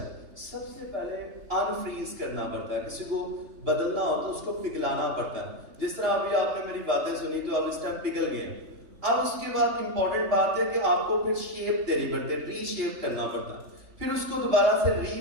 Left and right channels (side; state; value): left; late; 3.6 ms